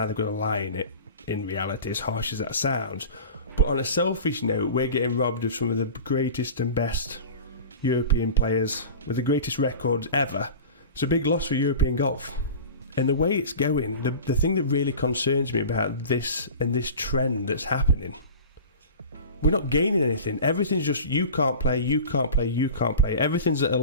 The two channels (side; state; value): both; inverted; correlation -0.36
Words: they've got to lie in it, in reality, as harsh as that sounds. But on a selfish note, we're getting robbed of some of the greatest and best European players with the greatest records ever. It's a big loss for European golf. And the way it's going, the thing that really concerns me about this and this trend that's happening, we're not gaining anything. Everything's just you can't play, you can't play, you can't play. Everything's at a